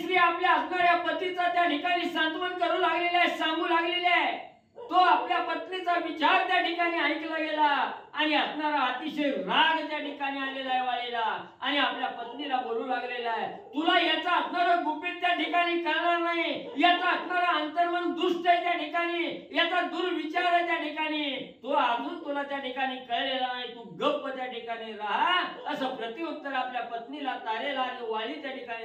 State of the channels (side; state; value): both; identical; correlation 1.00